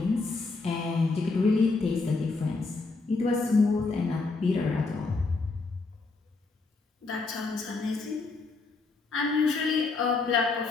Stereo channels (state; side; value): quieter; right; 3.9 dB